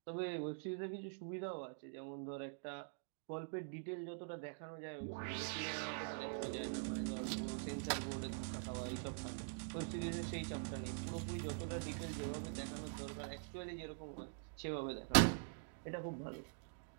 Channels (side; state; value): left; silent; digital silence